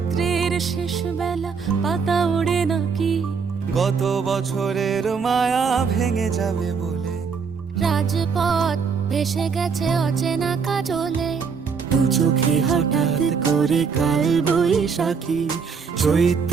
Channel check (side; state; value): left; quieter; 5.7 dB